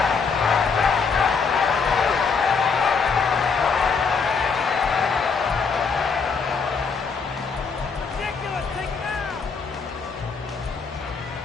Ridiculous, take it out.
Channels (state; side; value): quieter; right; 5.3 dB